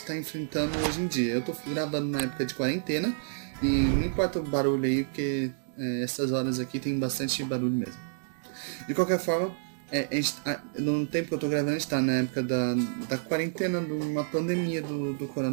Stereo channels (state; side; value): silent; left; 58 dB below the other